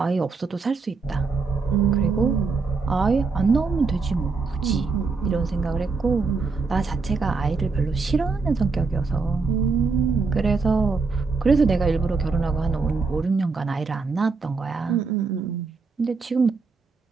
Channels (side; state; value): left; quieter; 4.4 dB